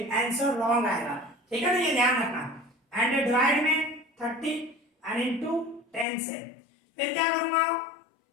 आंसर रॉन्ग आएगा, ठीक है ना, ये ध्यान रखना। एंड डिवाइड में 30 एंड इनटू 10 से, फिर क्या करूंगा,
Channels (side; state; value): right; drops out; at 6.1 s